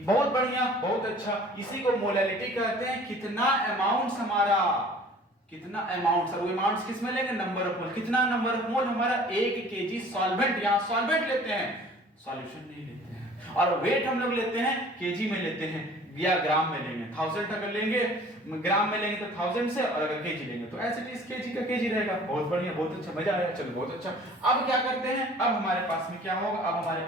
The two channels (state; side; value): normal; both; correlation 0.49